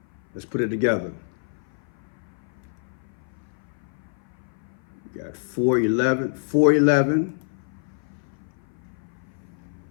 Let's put it together. We got 4/11,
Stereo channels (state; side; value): silent; right; 56 dB below the other